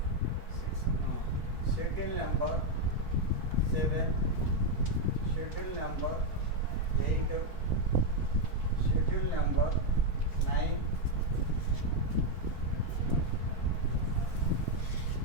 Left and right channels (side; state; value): left; late; 4.5 ms